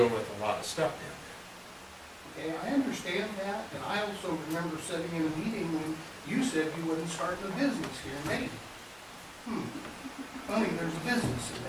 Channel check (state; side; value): identical; both; correlation 1.00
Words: with a lot of stuff down Okay, I understand that, and I also remember sitting in a meeting when you said you wasn't starting a business here in Dayton. Funny, there's a business